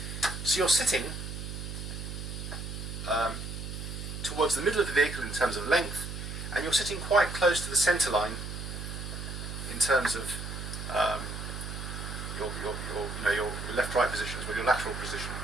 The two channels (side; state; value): right; noise; hum, 7 dB below the sound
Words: So you're sitting towards the middle of the vehicle in terms of length, and you're sitting quite close to the centre line in terms of your left-right position as well, your lateral position,